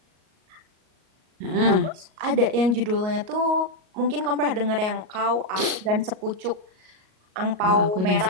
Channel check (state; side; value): late; left; 38 ms